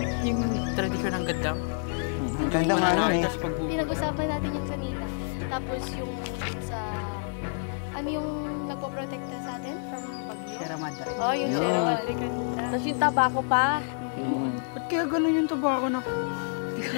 yung tradisyon ng gaddang? Ang ganda nga nun eh. Pinag-usapan natin yun kanina. Tapos yung dun sa... Ano yung nagpo-protekta sa atin from bagyo? Sierra Madre. Oh, yung Sierra Madre kanina. Tapos yung tabako pa. Ba't kaya ganun yung tabako na?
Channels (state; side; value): silent; right; 59 dB below the other